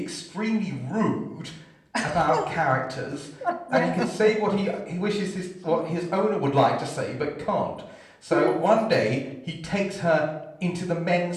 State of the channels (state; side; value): identical; both; correlation 1.00